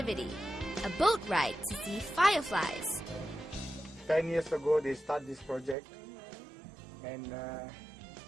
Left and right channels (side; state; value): left; drops out; at 5.8 s